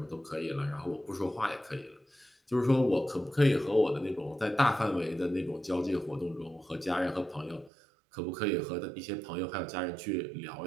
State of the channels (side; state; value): left; drops out; at 7.7 s